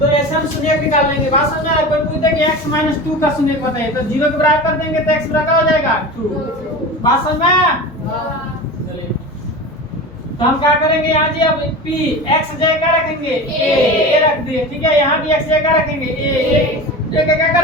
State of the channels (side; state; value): both; normal; correlation 0.31